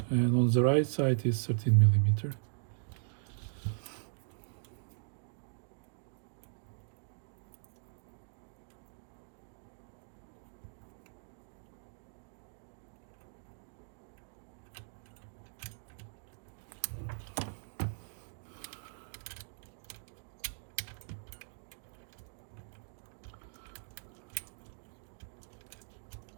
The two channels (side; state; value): left; silent; digital silence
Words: And on the right side is 13 millimeter.